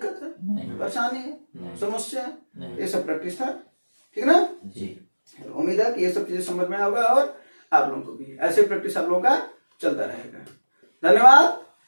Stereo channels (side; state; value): both; inverted; correlation -1.00